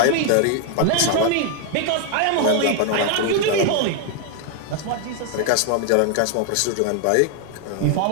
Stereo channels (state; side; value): different; both; correlation 0.00